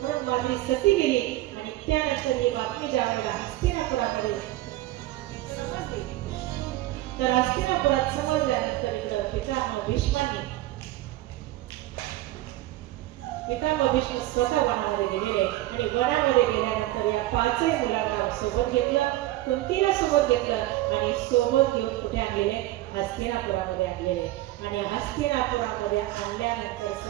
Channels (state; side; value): quieter; left; 16.3 dB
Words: म्हणून माद्री सती गेली आणि त्यानंतर ही बातमी ज्या वेळेला हस्तिनापुरामध्ये समजली तर हस्तिनापुरात समजल्यानंतर इकडं पितामह भीष्म स्वतः वनामध्ये गेलेले आणि वनामध्ये गेल्यानंतर या 5ही मुलांना सोबत घेतलं. कुंतीला सोबत घेतलं आणि सोबत घेऊन कुठे आणलेले? हस्तिनापुरामध्ये आणलेले. आणि हस्तिनापुरामध्ये आणल्यानंतर